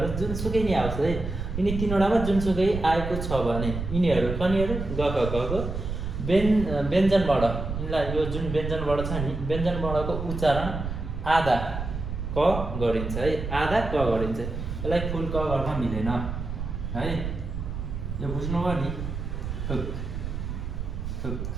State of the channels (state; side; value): noise; right; rumble, 5 dB below the sound